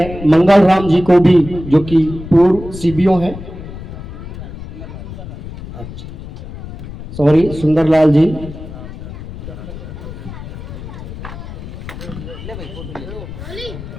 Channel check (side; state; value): left; noise; rumble, 11 dB below the sound